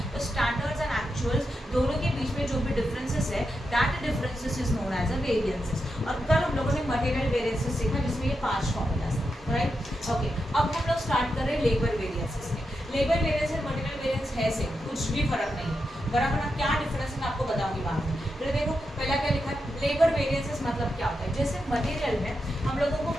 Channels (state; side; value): normal; both; correlation 0.87